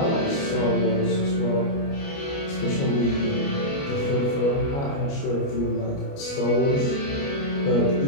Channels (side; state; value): right; late; 29 ms